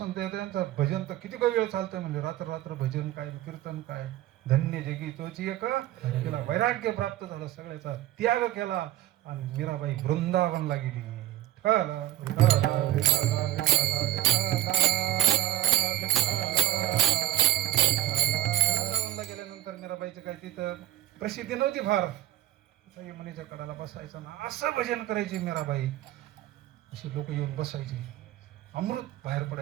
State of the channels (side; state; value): left; quieter; 14.9 dB